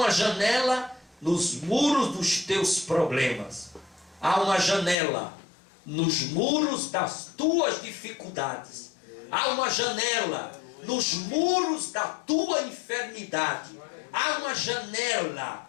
janela nos muros dos teus problemas. Há uma janela nos muros das tuas dificuldades. Há uma janela nos muros da tua enfermidade. Há uma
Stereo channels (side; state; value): right; drops out; at 5.0 s